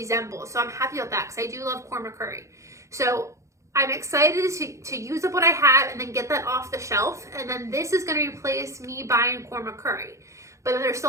So I'm happy about that because I do love korma curry. So I'm excited to use up what I have and then get that off the shelf. And then this is going to replace me buying korma curry. But then there's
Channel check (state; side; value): late; left; 0.15 ms